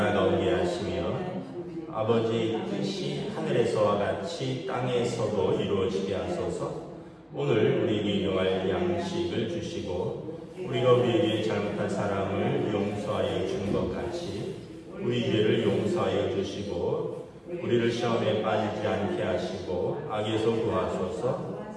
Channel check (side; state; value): both; identical; correlation 1.00